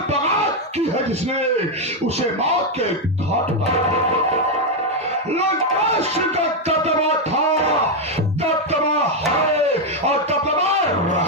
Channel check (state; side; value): normal; both; correlation 0.03